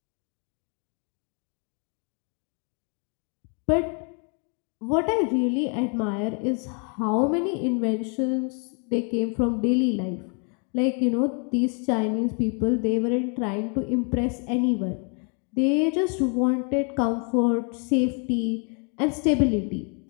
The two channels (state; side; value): quieter; right; 39.0 dB